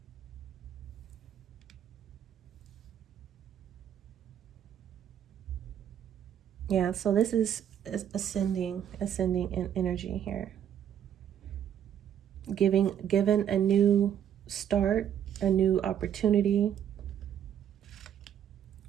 Yeah, so this is ascending in energy here. Given a new start, a new opportunity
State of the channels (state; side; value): quieter; left; 9.5 dB